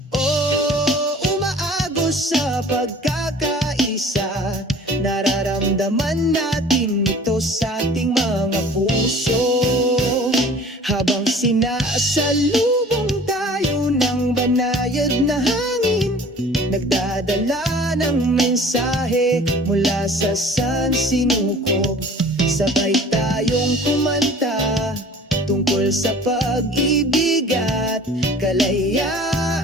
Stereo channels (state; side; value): normal; both; correlation 0.47